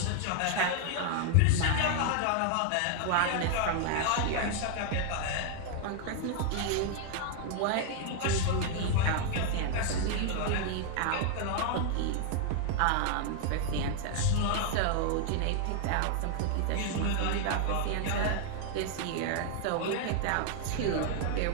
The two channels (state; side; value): different; both; correlation 0.00